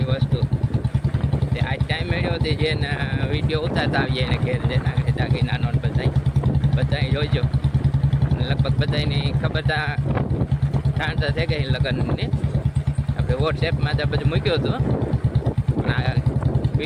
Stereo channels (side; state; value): both; identical; correlation 1.00